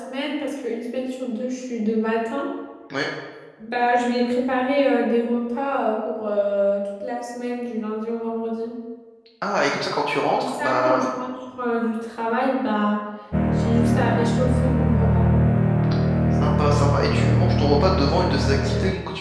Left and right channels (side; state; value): both; identical; correlation 1.00